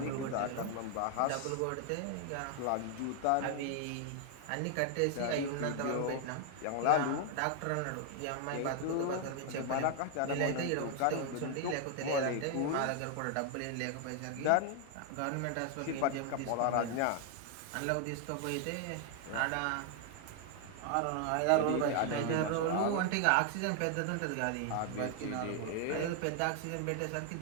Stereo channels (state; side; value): different; both; correlation 0.00